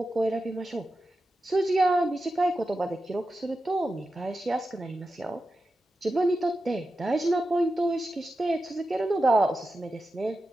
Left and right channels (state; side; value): normal; both; correlation 0.91